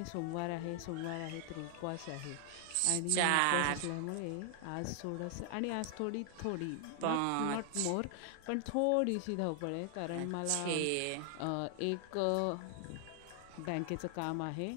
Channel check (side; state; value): both; different; correlation 0.00